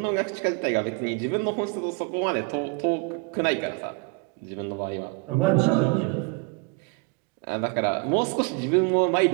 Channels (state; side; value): quieter; left; 29.4 dB